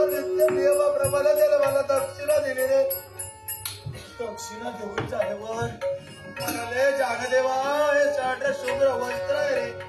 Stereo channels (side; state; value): both; identical; correlation 1.00